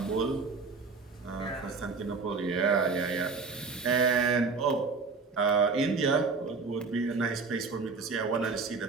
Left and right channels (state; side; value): quieter; left; 4.5 dB